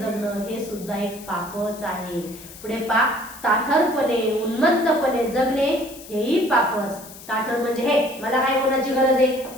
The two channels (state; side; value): noise; left; hiss, 17 dB below the sound